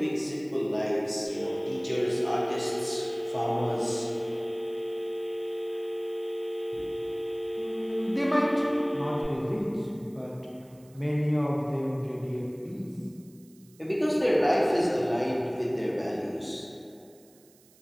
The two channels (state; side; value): noise; right; hiss, 28 dB below the sound